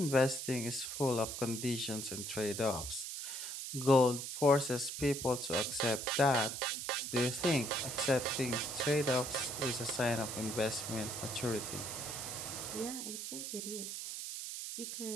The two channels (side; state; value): right; noise; hiss, 6 dB below the sound